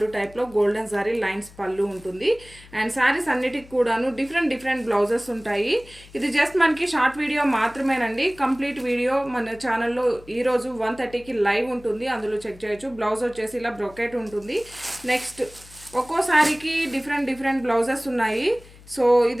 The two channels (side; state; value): left; noise; hum, 22 dB below the sound